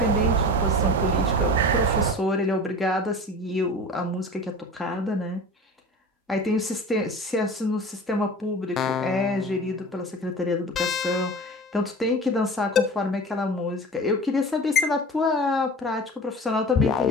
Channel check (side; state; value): both; normal; correlation 0.36